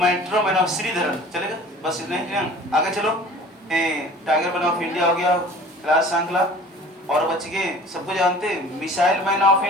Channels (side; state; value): both; normal; correlation 0.45